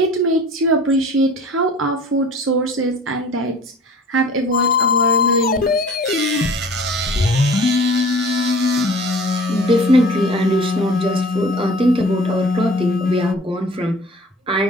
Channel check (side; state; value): both; normal; correlation 0.46